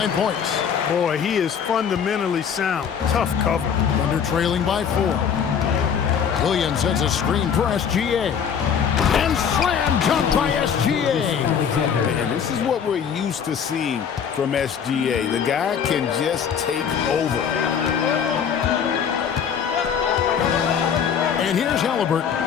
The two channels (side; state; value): right; quieter; 7.5 dB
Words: points. Boy, he is fundamentally sound. Tough cover. Thunder trailing by 4. Williams sets a screen for SGA. And slam dunk by SGA. And this is what we're used to seeing from SGA. The guy can just take over. And here's Halliburton.